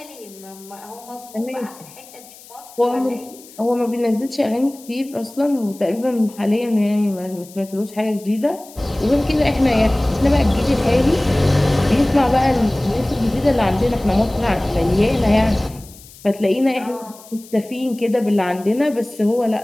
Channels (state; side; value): noise; left; hiss, 21 dB below the sound